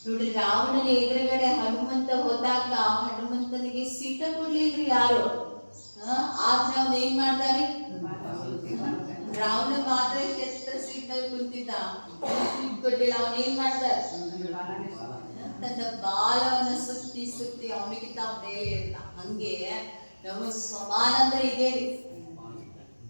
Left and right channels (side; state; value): both; inverted; correlation -1.00